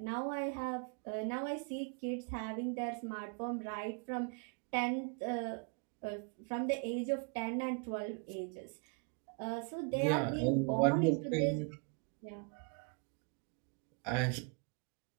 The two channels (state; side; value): quieter; left; 35.7 dB